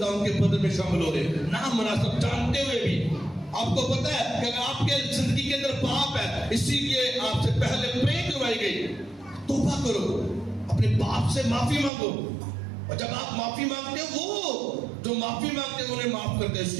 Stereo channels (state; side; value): drops out; left; at 11.9 s